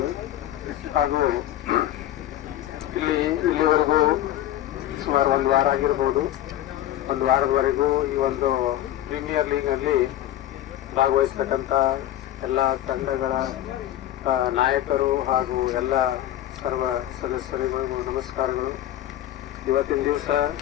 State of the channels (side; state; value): right; quieter; 13.1 dB